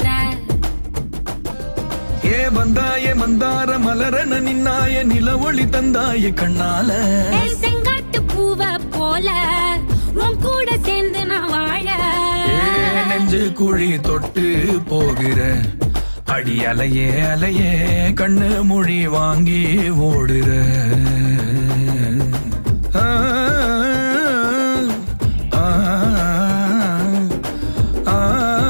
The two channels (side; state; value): both; inverted; correlation -1.00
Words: ஏ வந்தாய மந்தார மலரன நின்னாய நில ஒளி தந்தாய கண்ணால. செங்காட்டு பூவ போல உன் கூட சேர்ந்து நான் வாழ. நெஞ்சு குழி தொட்டு போகிற அடி அலையே அலையே கண்ணு மொழி வாங்கி ஓடுற.